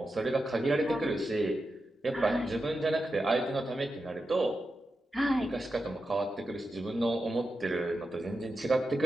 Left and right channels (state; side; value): normal; both; correlation 0.89